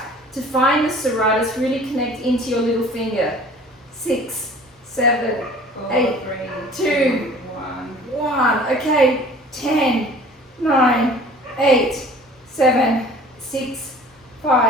To find the serratus, really connect into your little finger. 6, 7, 8, 2, 1. Okay, 10, 9, 8, 7, 6,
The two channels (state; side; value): normal; both; correlation 0.47